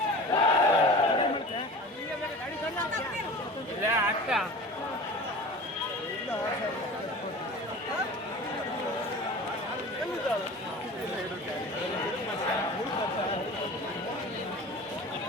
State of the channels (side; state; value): both; normal; correlation 0.37